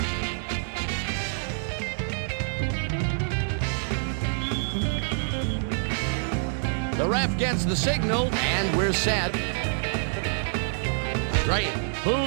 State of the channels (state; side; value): silent; left; digital silence